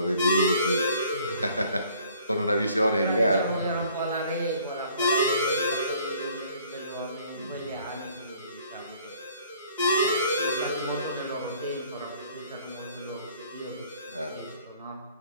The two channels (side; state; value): both; inverted; correlation -0.58